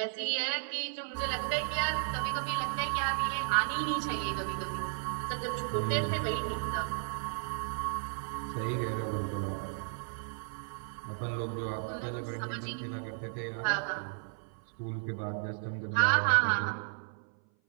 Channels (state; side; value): silent; left; 55 dB below the other